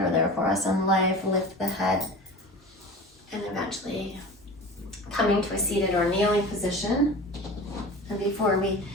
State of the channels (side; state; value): both; normal; correlation 0.35